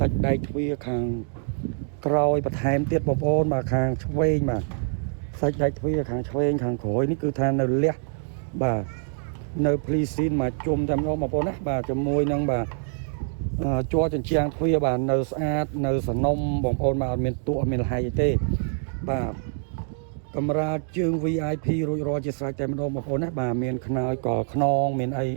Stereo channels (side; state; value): left; silent; digital silence